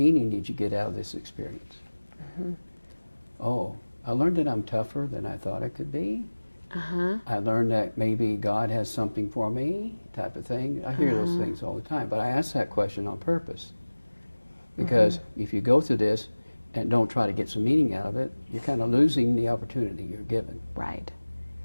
did you get out of this experience? Oh, I learned that I'm tougher than I thought I could be. I learned that maybe God has something for me, type of thing. I hear those things all the time, but I ask that question on purpose. Because if you go through this and don't try to get some meaning out of it, you're kind of losing the opportunity you're given. Right.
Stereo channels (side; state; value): both; inverted; correlation -1.00